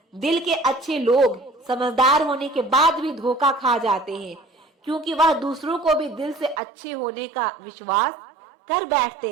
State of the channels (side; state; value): left; drops out; at 6.6 s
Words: दिल के अच्छे लोग समझदार होने के बाद भी धोखा खा जाते हैं, क्योंकि वह दूसरों को भी दिल से अच्छे होने का विश्वास कर